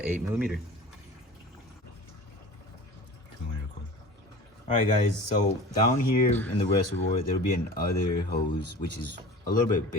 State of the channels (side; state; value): both; normal; correlation 0.38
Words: 8mm. Alright guys, so down here in the reservoir there will be another hose which is a little bit